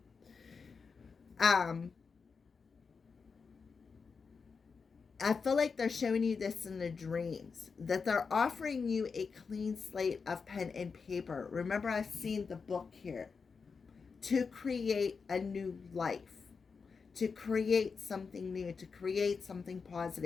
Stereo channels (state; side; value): quieter; right; 5.2 dB